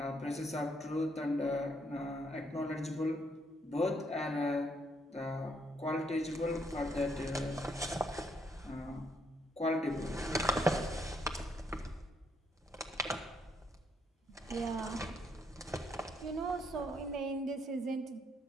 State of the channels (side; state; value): both; normal; correlation 0.73